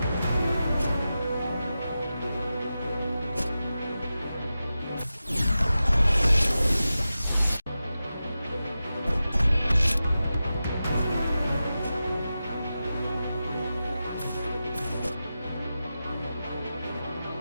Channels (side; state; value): both; inverted; correlation -0.93